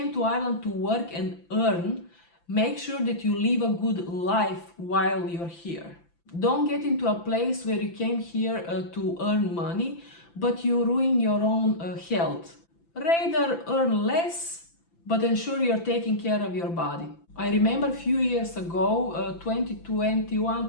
to Ireland to work and earn, make sure that you live a good life while you're here. Don't get into a place where you came here to earn money, but you ruin your own health. Rather earn less, but ensure you're taking care of your body. I remember a few years ago,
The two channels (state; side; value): late; right; 5.9 ms